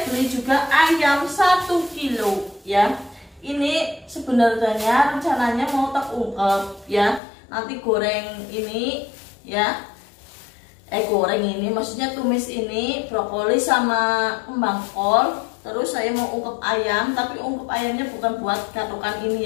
beli juga ayam 1 kilo ya. Ini sebenarnya rencananya mau tak ungkep ya. Nanti goreng ini ya. Goreng ini maksudnya tumis ini brokoli sama kembang kol. Terus saya mau ungkep ayam, tapi ungkep ayamnya bukan buat gatokan ini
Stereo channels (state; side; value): drops out; right; at 7.2 s